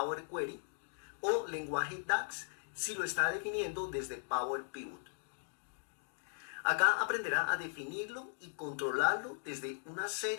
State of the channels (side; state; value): right; silent; digital silence